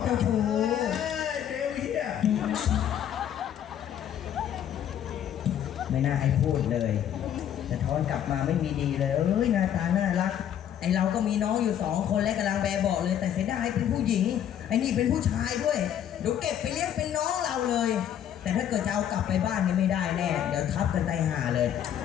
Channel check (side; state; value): right; quieter; 10.0 dB